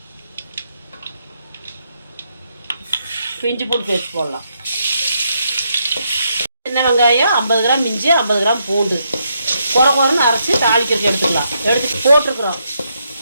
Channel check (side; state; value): both; inverted; correlation -0.78